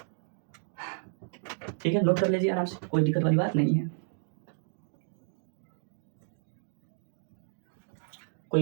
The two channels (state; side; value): silent; left; digital silence